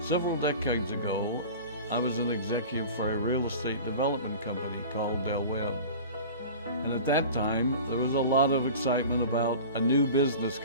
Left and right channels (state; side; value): inverted; both; correlation -0.37